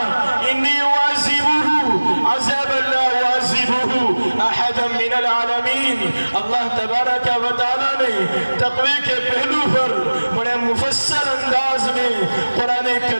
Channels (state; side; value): inverted; both; correlation -1.00